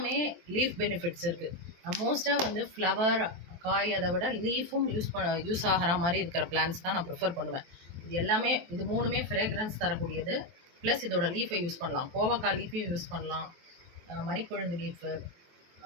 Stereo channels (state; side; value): late; left; 23 ms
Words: லீஃப் பெனிஃபிட்ஸ் இருக்குது. நான் மோஸ்ட்டாக வந்து ஃப்ளவர் காய் அதை விட லீஃபும் யூஸ் ஆகிற மாதிரி இருக்கிற பிளான்ட்ஸ் தான் நான் ப்ரிஃபர் பண்ணுவேன். இது 3மே ஃப்ரேக்ரன்ஸ் தரக்கூடியது. ப்ளஸ் இதோட லீஃபை யூஸ் பண்ணலாம், கோவக்காய் லீஃபையும் யூஸ் பண்ணலாம், மரிக்கொழுந்து லீஃபு,